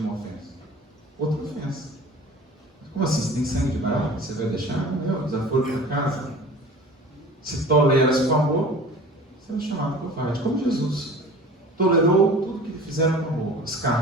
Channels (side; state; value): both; normal; correlation 0.41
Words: ofensa? Outra ofensa. Como assim? Você tem sangue de barata? Você vai deixar? Não, desaforo para casa. Se toleras com amor, você é chamado covarde. Como Jesus tolerou tudo que lhe fizeram com amor.